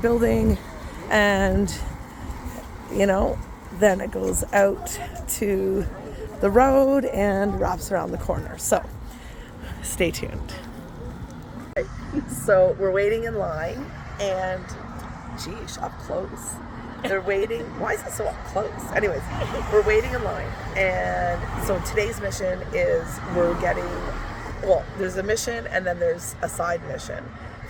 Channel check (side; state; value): both; identical; correlation 1.00